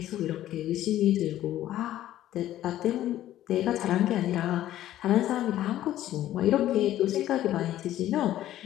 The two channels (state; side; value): quieter; right; 13.2 dB